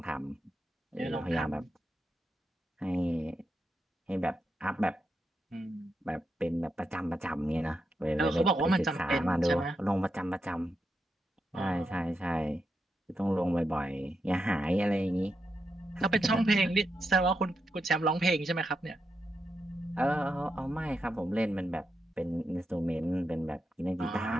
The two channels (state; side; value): normal; both; correlation 0.85